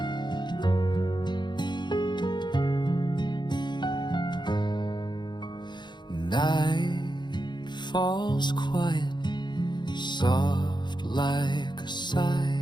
Night falls quiet, soft like a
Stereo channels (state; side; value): late; right; 0.22 ms